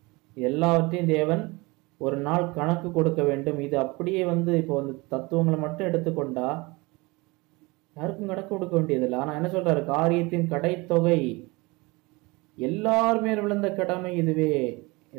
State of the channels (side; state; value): left; quieter; 24.5 dB